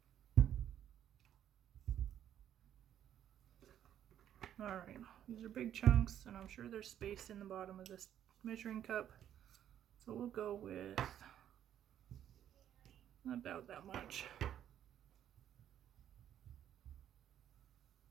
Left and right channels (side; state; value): left; quieter; 10.5 dB